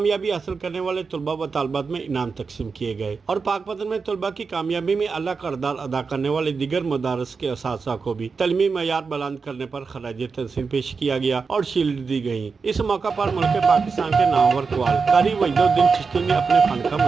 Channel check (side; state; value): left; quieter; 5.0 dB